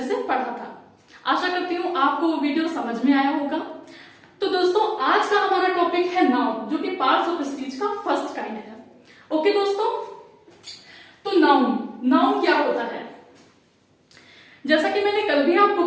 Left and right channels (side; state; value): both; identical; correlation 1.00